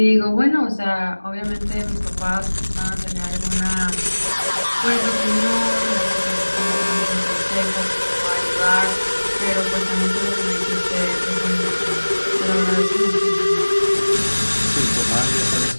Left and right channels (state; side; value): inverted; both; correlation -1.00